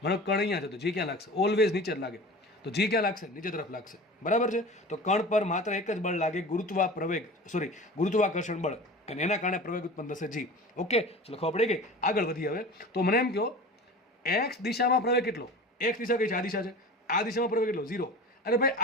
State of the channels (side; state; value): both; normal; correlation 0.36